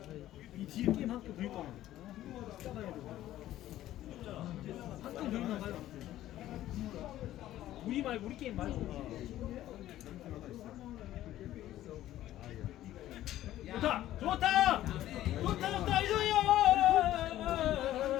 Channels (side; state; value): right; quieter; 13.7 dB